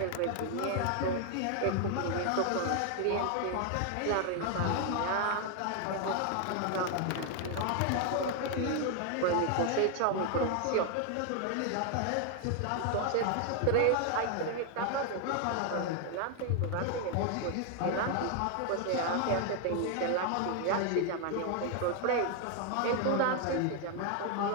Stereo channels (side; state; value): both; different; correlation 0.00